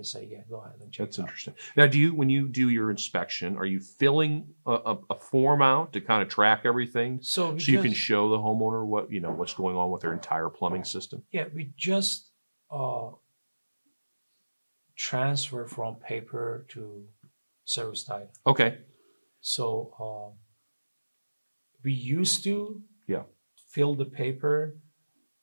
say, yeah, go ahead and check That's it out. interesting. Now, when you do your inspection, are you filling a form out to kind of track everything So so you can show the homeowner what's going on with their entire plumbing system? yeah, we just transfer from paper to service title. Okay. So we used to Yeah. fill the paper,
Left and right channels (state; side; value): inverted; both; correlation -1.00